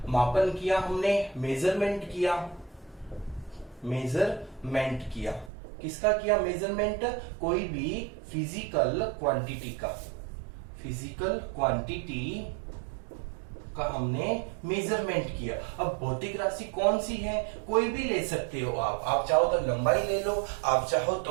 किया हमने, मेजरमेंट किया। किसका किया मेजरमेंट? कोई भी फिजिकल क्वांटिटी का हमने मेजरमेंट किया। अब भौतिक राशि कौन सी है, कोई भी ले सकते हो आप चाहो तो लंबाई ले लो, आप चाहो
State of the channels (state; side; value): drops out; left; at 5.5 s